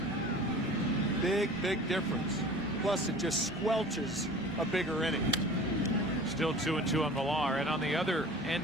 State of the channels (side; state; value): both; normal; correlation 0.42